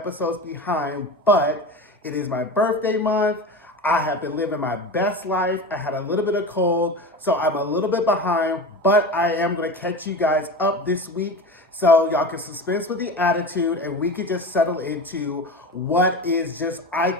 behind, but it is my birthday month. I have been living my best life. I had a little bit of cold, so I'm a little bit behind, but I am gonna catch you guys up this week so y'all can suspense with the attitude and we can just settle into what is just, I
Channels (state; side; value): normal; both; correlation 0.28